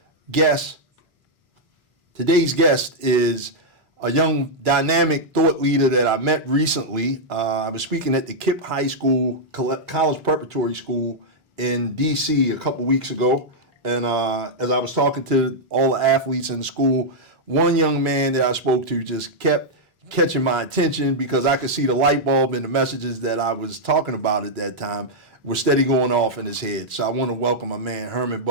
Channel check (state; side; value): normal; both; correlation -0.05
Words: guest is a young dynamic thought leader that I met recently. I was speaking at the KIPP High School, College Preparatory School in D.C. a couple weeks ago. And as I was talking to all the athletes in the school, one young man that I spoke to just kept catching my attention because I could see the light bulb and the messages that I was talking about at that time were steady going off in his head. So I want to welcome my man, Herman